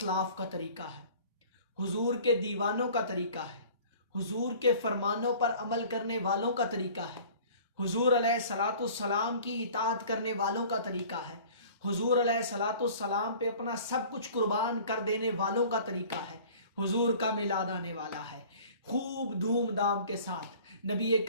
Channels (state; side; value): inverted; both; correlation -0.47